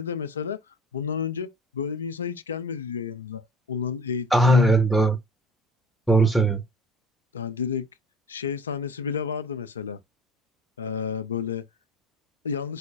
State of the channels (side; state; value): both; normal; correlation 0.46